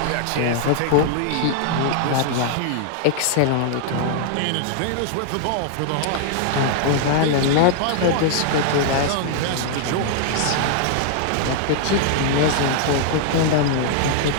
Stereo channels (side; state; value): both; different; correlation -0.01